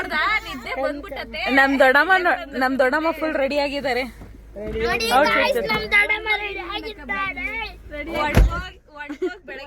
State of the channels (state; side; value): identical; both; correlation 1.00